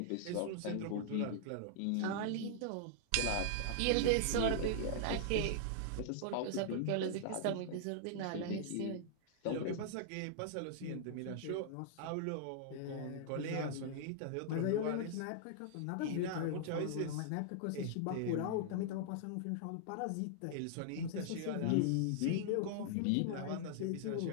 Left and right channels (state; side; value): different; both; correlation -0.01